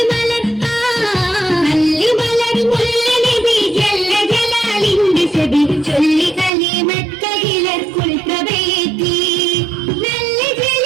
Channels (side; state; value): left; drops out; at 6.5 s